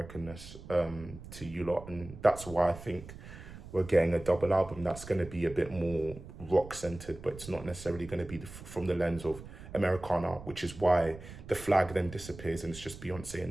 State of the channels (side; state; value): right; noise; rumble, 14 dB below the sound